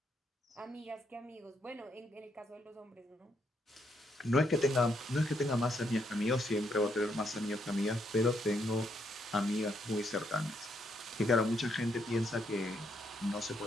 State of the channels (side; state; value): both; normal; correlation 0.75